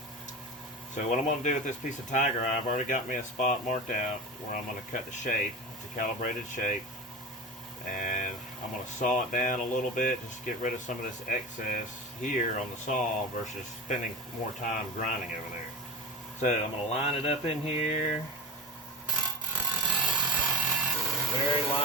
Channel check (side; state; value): both; normal; correlation 0.26